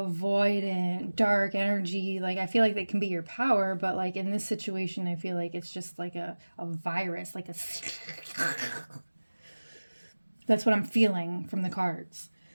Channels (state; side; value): inverted; both; correlation -1.00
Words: dark energy. Like I feel like that can be your power, but like in this situation, I feel like it's just like a virus, like a that's what I'm feeling from the cards.